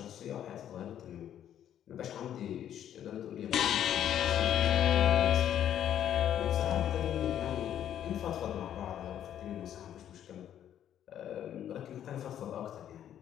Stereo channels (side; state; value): right; quieter; 10.4 dB